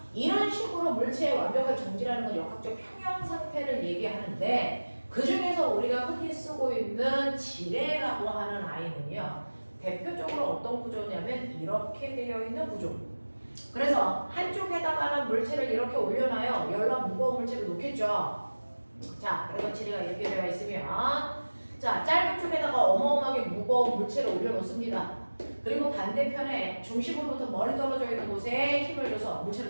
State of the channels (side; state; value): both; inverted; correlation -1.00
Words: 이런 식으로 물체의 완벽한 정지라는 건 역학적 평형 상태를 얘기하는데 그 중에서 우리가 흔히 쓰고 있는 지뢰라고 하는 아이는요. 대표적으로 어떤 구조냐면 이렇게 되어 있는 구조. 그래서 한쪽에다가는 물체를 이렇게 올려놔요. 열나 무거운 물체를 놓겠죠. 자, 그래서 지뢰가 이렇게 되어 있으면 자, 짧은 쪽에다가 어마어마하게 무거운 물체를 올려놓습니다. 그리고 반대편에 중심으로부터 멀리 떨어져 있는 곳에 힘을 줘서